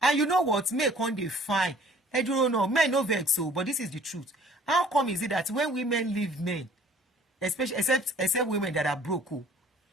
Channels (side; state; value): both; normal; correlation 0.54